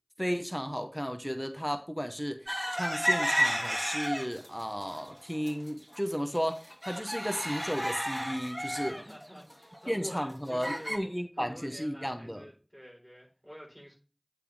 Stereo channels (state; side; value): identical; both; correlation 1.00